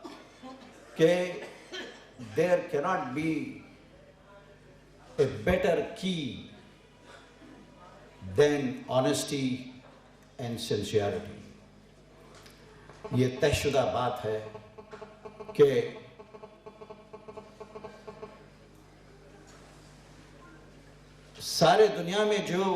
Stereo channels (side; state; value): both; identical; correlation 1.00